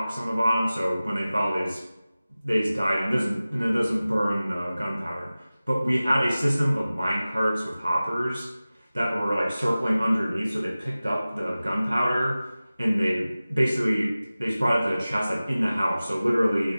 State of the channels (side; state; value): both; inverted; correlation -0.97